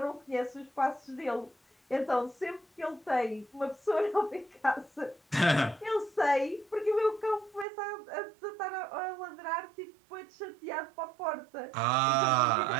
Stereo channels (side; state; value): left; drops out; at 7.7 s